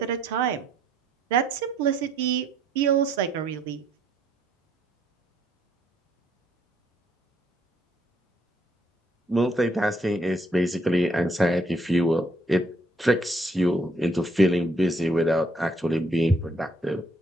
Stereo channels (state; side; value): normal; both; correlation 0.69